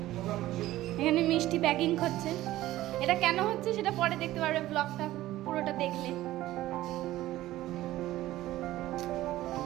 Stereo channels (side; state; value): left; quieter; 15.5 dB